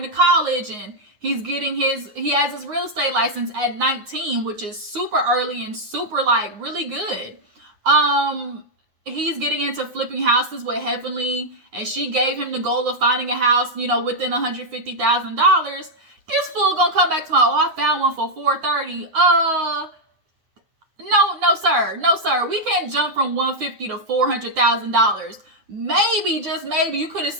to college, and he has his real estate license at 19, which is super early and super like really good. He's getting into flipping houses with Heavenly, and she gave him the goal of finding a house, you know, within $150,000. This fool gonna come back to my, oh, I found one for $430. No, sir. We can't jump from $150 to $400,000. Maybe, just maybe, you could have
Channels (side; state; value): left; late; 9.6 ms